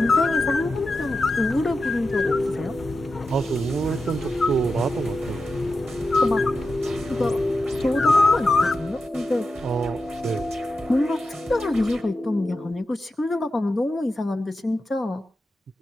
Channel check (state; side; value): normal; both; correlation 0.90